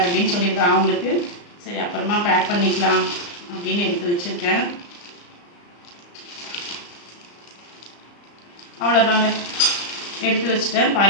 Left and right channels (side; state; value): right; late; 34 ms